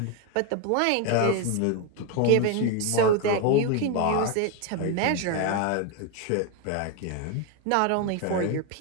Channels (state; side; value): different; both; correlation 0.01